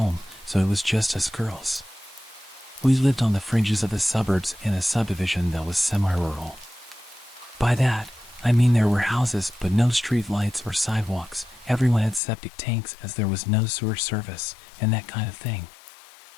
so it was just us girls. We lived on the fringes of the suburbs in a subdivision that was semi-rural. By that, I mean there were houses but no street lights or sidewalks. Everyone had septic tanks as there was no sewer service and that kind of thing.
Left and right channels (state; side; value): drops out; right; at 12.2 s